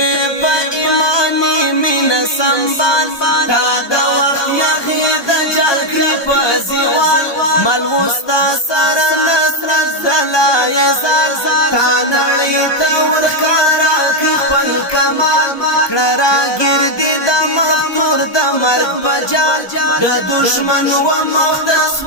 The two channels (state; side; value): late; right; 1.2 ms